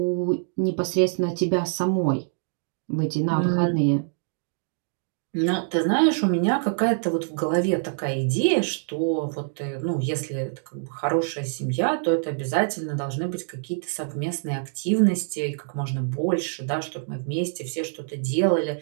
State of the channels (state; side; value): silent; left; digital silence